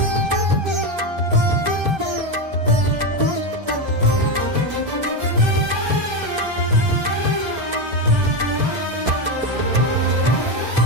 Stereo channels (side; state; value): left; late; 1.3 ms